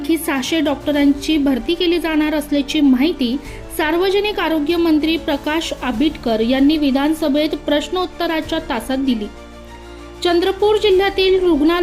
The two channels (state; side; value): identical; both; correlation 1.00